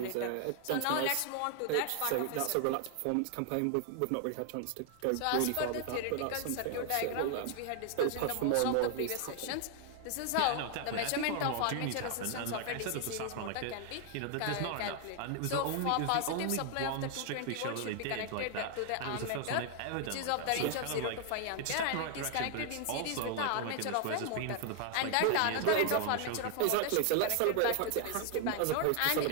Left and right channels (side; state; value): both; different; correlation 0.00